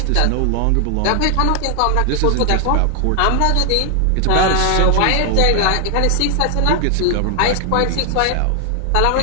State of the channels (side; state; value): both; different; correlation 0.00